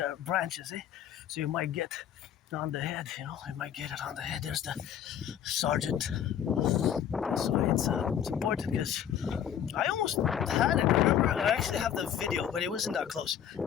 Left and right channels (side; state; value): right; quieter; 9.5 dB